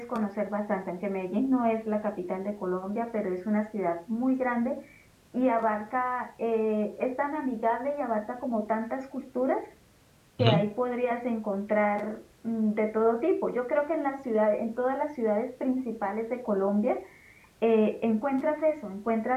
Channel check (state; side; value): identical; both; correlation 1.00